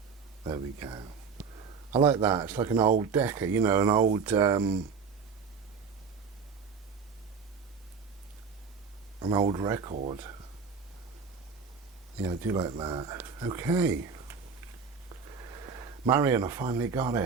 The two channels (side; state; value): left; quieter; 5.6 dB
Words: There we go. I like that. It's like an old Decca, you know, an old record. Yeah, I do like that. Okay. Marion, I finally got